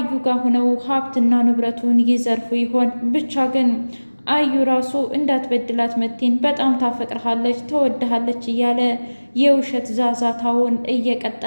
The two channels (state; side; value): inverted; both; correlation -1.00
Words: ጋር ሆነው ሀብትና ንብረቱን ይዘርፉ ይሆን? ብቻ ግን አዩ ራሱ እንዳትበድላት መቲን በጣም ታፈቅርሃለች፣ ተወድሃለች እያለ የውሸት ዛዛታውን